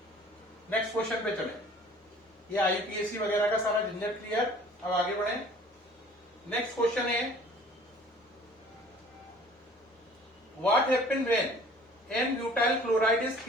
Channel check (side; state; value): both; normal; correlation 0.51